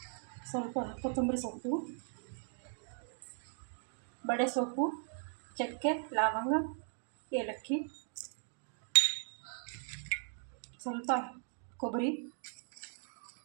ಸ್ವಲ್ಪ ಕೊತ್ತಂಬರಿ ಸೊಪ್ಪು, ಬಡೆ ಸೊಪ್ಪು, ಚಕ್ಕೆ, ಲವಂಗ, ಏಲಕ್ಕಿ, ಸ್ವಲ್ಪ ಕೊಬ್ಬರಿ,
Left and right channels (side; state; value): left; silent; 52 dB below the other